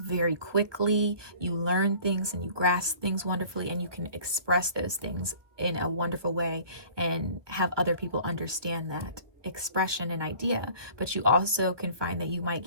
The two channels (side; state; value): left; late; 1.4 ms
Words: very quickly. You learn things and you grasp things wonderfully, and you can express those things in a wonderful way and have other people understand that expression and idea. But you also can find that you might